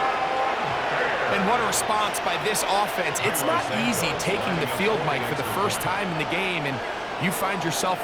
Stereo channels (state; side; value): identical; both; correlation 1.00